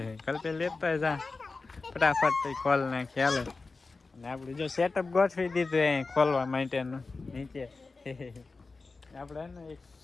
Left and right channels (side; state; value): right; quieter; 3.9 dB